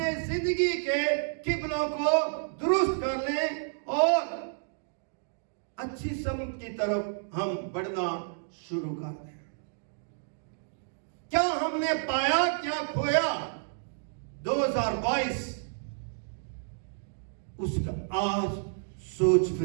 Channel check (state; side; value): silent; left; digital silence